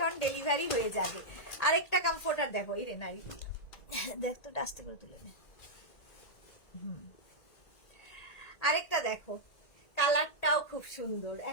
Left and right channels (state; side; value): late; right; 1.9 ms